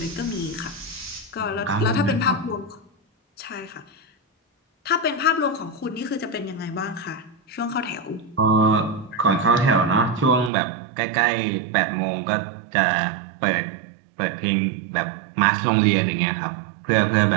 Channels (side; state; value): left; drops out; at 10.5 s